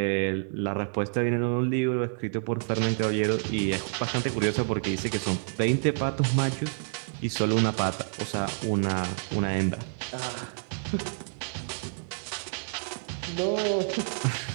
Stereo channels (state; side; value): silent; left; 58 dB below the other